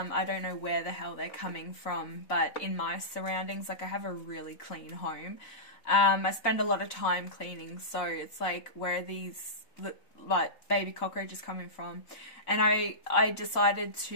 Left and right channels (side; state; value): right; late; 4.0 ms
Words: don't know where the hell they're coming from, but in my surroundings, like I have a really clean home. I spend a lot of time cleaning, so it's like, where are these like baby cockroaches coming from? And I decided